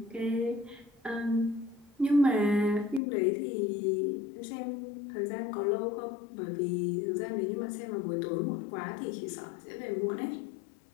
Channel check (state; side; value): drops out; right; at 3.0 s